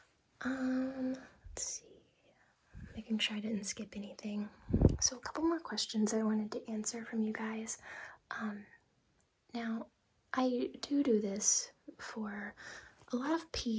Let's see. Making sure I didn't skip anything. So a couple more questions I wanted to answer from you guys. Now, I do this for a lot of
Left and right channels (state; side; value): identical; both; correlation 1.00